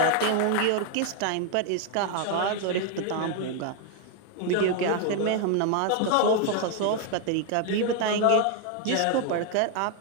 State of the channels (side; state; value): both; different; correlation 0.00